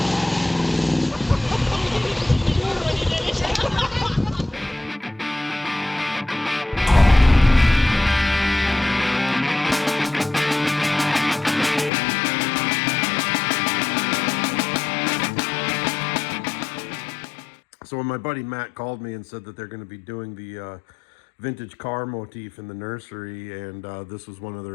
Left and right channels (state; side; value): drops out; right; at 11.9 s